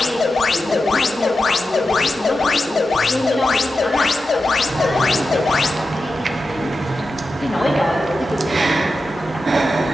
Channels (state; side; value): normal; both; correlation 0.91